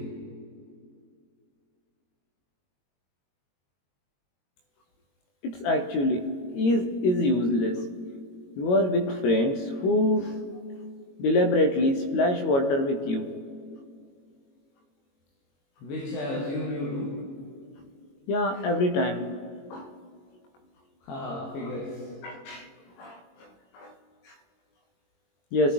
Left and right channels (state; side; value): late; right; 22 ms